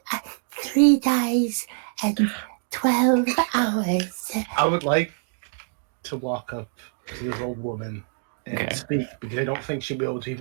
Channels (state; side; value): silent; left; digital silence